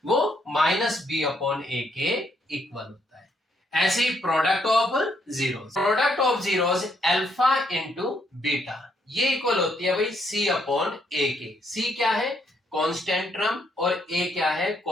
वो माइनस बी अपॉन ए के इक्वल होता है। ऐसे ही product of zeros alpha into beta, ये इक्वल होती है भाई सी अपॉन ए के। सी क्या है? कांस्टेंट टर्म और ए क्या है?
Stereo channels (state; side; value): normal; both; correlation 0.73